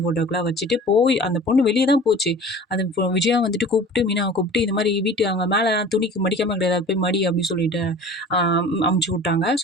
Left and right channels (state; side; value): normal; both; correlation 0.42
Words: ஃபோட்டோக்குலாம் வச்சுட்டு போய் அந்த பொண்ணு வெளிய தான் போச்சு. அந்த விஜயா வந்துட்டு கூப்பிட்டு மீனாவ கூப்பிட்டு இந்த மாரி வீட்டு அங்க மேல துணிக்கு மடிக்காம கிடையாது. அது போய் மடி அப்படின்னு சொல்லிட்டு அ அமுச்சு விட்டாங்க.